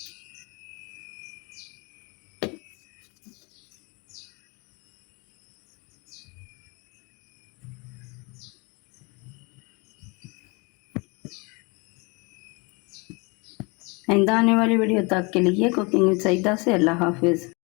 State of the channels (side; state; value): right; quieter; 29.1 dB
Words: आइंदा आने वाली वीडियो तक के लिए कुकिंग विद सईदा से अल्लाह हाफिज़।